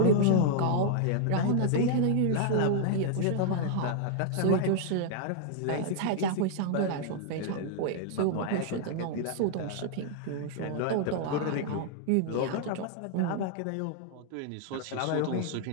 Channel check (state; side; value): different; both; correlation -0.01